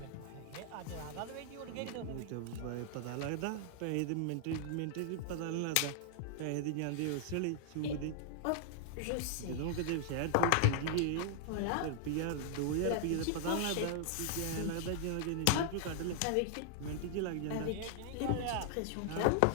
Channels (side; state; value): both; different; correlation -0.01